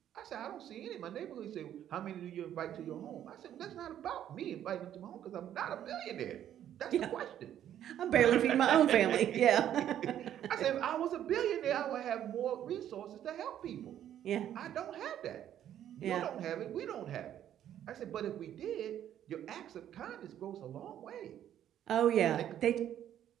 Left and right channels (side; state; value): left; quieter; 10.8 dB